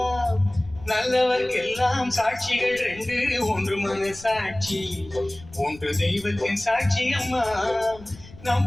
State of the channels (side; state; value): left; noise; rumble, 20 dB below the sound